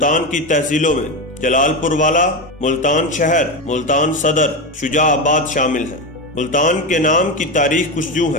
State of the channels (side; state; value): both; normal; correlation 0.16